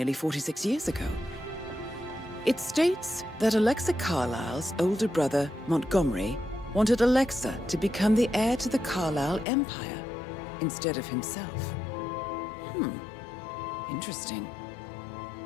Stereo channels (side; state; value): right; drops out; at 9.5 s